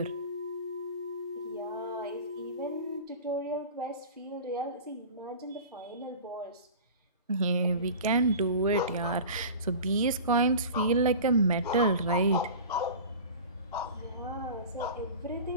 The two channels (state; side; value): inverted; both; correlation -0.36